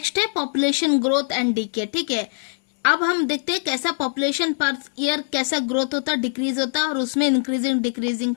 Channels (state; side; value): silent; right; 61 dB below the other